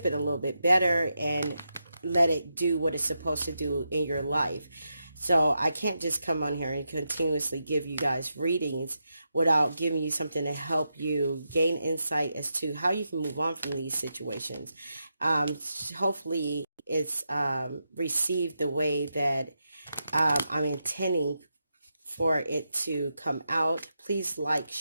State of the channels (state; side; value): inverted; both; correlation -0.86